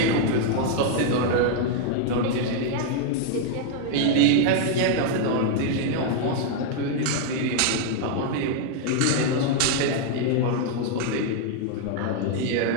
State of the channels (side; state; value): both; different; correlation 0.00